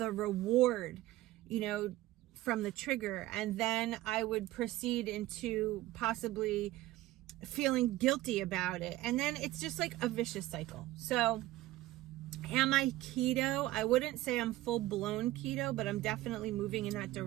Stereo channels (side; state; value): left; quieter; 16.3 dB